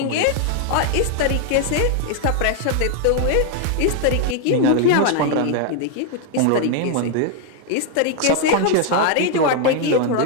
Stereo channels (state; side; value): different; both; correlation 0.00